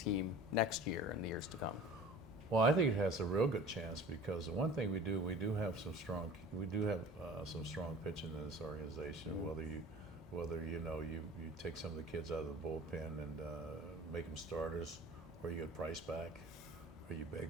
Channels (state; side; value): normal; both; correlation 0.42